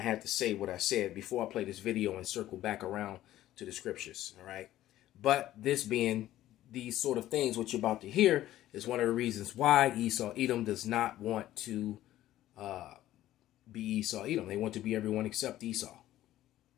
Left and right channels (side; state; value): right; quieter; 14.0 dB